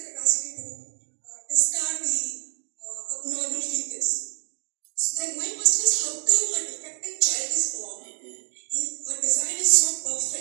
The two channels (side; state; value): left; silent; digital silence